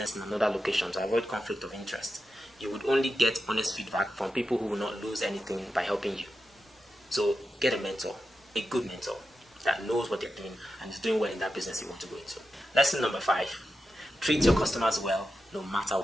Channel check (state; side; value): normal; both; correlation 0.89